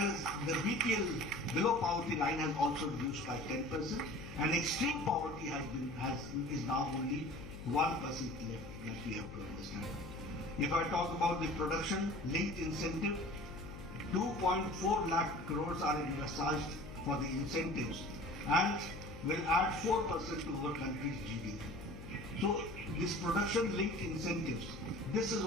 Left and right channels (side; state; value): left; noise; hum, 13 dB below the sound